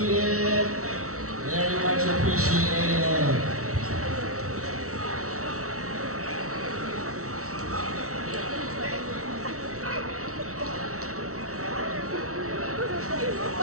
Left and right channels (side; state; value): left; late; 0.64 ms